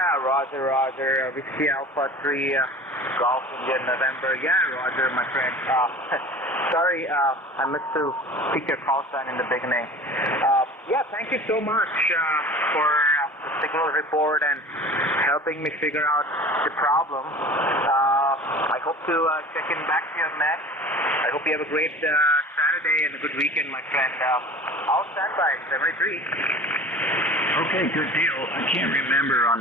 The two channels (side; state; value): both; normal; correlation 0.40